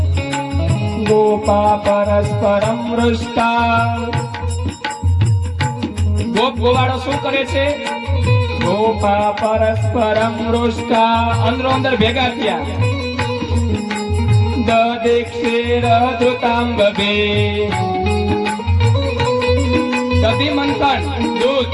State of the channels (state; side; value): identical; both; correlation 1.00